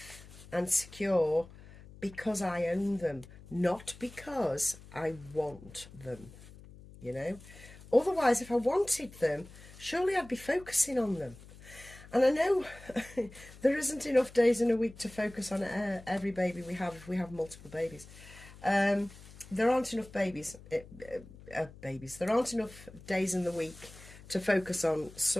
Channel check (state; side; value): noise; left; hum, 19 dB below the sound